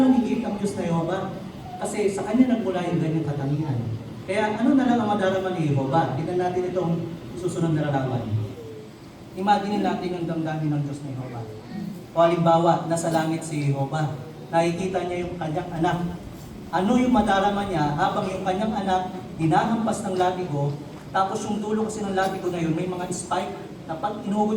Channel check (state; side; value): identical; both; correlation 1.00